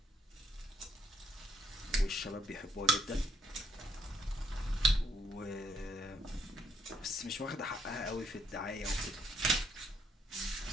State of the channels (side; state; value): both; normal; correlation 0.72